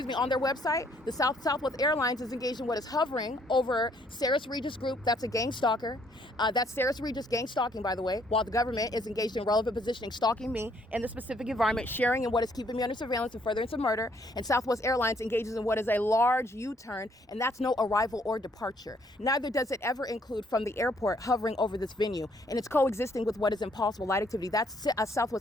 their website. The Southwest Airlines is engaged in what is hovering over Sarah's Regis Group. That's a gang stalker. That's Sarah's Regis gang stalking, by the way, while the government is engaged in relevant positioning, stalking me in the specific environment, sharing in what is keeping me under surveillance and furtherance of murder. And Southwest Airlines engages in what is a large U-turn, and that's no arrival or departure. Neither does it ever include from the airport hovering over this venue, and it's coexisting with what is impossible light activity. That's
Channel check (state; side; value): normal; both; correlation 0.67